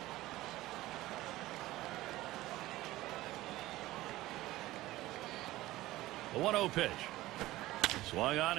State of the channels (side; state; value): left; quieter; 17.1 dB